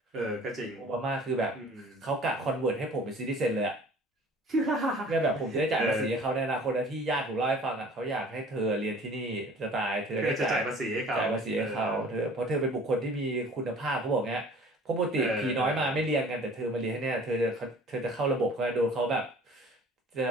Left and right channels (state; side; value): normal; both; correlation 0.48